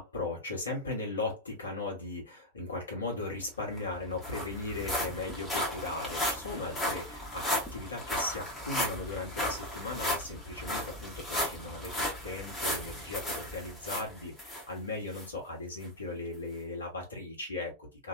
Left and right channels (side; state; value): both; normal; correlation 0.03